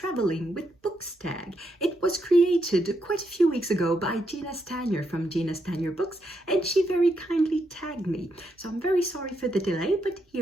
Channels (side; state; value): both; normal; correlation 0.80